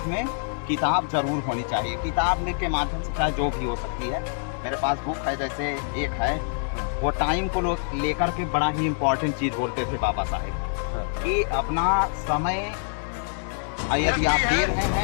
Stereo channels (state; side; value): silent; right; digital silence